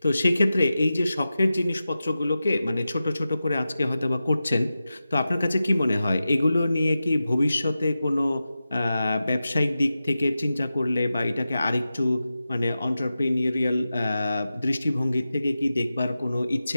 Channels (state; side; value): inverted; both; correlation -0.93